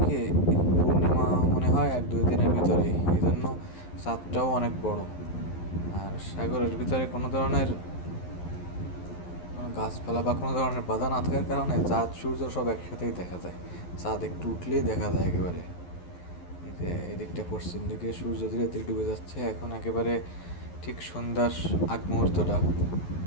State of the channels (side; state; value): right; late; 11 ms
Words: কি, পূর্ণিমা মনে হয় 1-2 দিনের ভিতরেই, এই জন্য চাঁদটাও অনেক বড়। আর সাগরের ভিতরে কোনো ধরনের কোনো গাছপালা বা কোনো ধরনের বাধা না থাকার কারণে চাঁদ সূর্য সব একসাথেই দেখা যায়। চাঁদ একটু উঠলেই দেখা যায় একেবারে। এই যে এদিকটা পশ্চিম দিকে সূর্য ধীরে ধীরে ডুবে যাচ্ছে, এখন একেবারে ঠিক সন্ধ্যার আগ মুহূর্তটা।